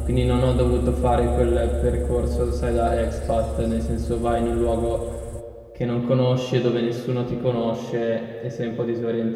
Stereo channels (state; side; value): identical; both; correlation 1.00